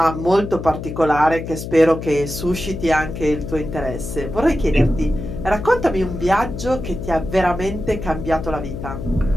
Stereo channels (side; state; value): left; noise; hum, 8 dB below the sound